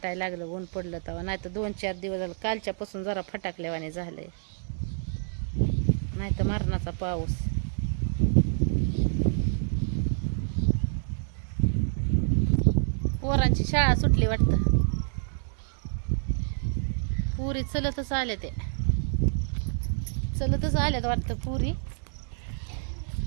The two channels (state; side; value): silent; left; digital silence